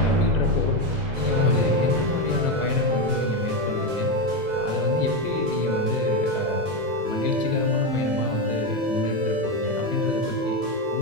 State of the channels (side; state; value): left; late; 2.0 ms